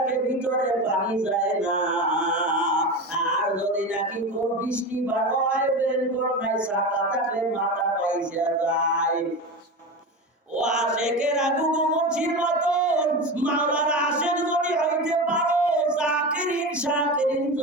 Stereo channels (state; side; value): normal; both; correlation 0.24